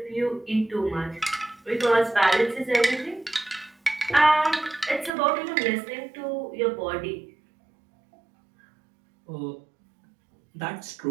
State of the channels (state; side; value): drops out; left; at 5.1 s